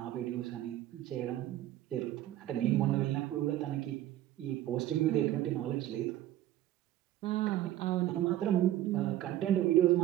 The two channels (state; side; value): quieter; left; 13.4 dB